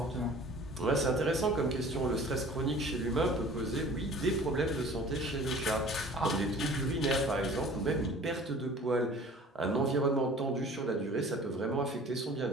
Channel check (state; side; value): normal; both; correlation 0.46